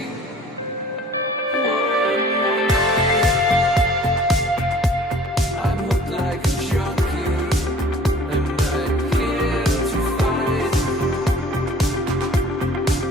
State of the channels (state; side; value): normal; both; correlation 0.51